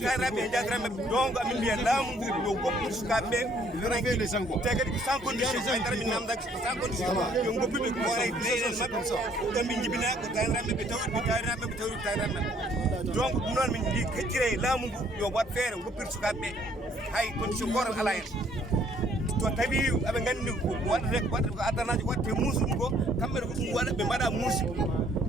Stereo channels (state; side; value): normal; both; correlation 0.63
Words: e jadiraɓeɓe donc amin mbiya laamu ngu yo goppude sukaɓeɓe te kadi ko sans condition haydara min namdaki ko sans condition yo goppuɓe koore leyɗele mabɓe ɗon ɓe jibina ko tawiraɓeɓe tawiraɓeɓe tawiraɓeɓe donc ɗum noon min mbi keccire laamu ngu yo wat feere goppir sukaɓeɓe hay condition gotal ala hen to tawi aɓe gandi ko waɗata ko addanaji waɗete muusuɗum ko kamɓe ko ɗum waɗa ɓe mbaɗa muusi